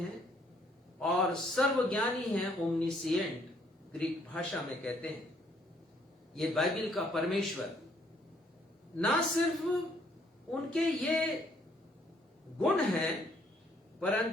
और सर्वज्ञानी है, ओमनीसिएंट ग्रीक भाषा में कहते हैं। ये बाइबल का परमेश्वर ना सिर्फ उनके ये गुण हैं,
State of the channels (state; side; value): normal; both; correlation 0.66